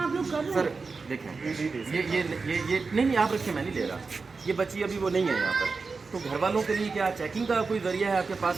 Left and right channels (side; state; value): left; quieter; 4.4 dB